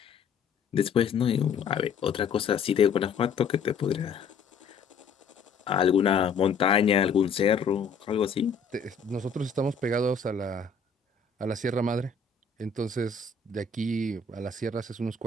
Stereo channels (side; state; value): right; quieter; 5.4 dB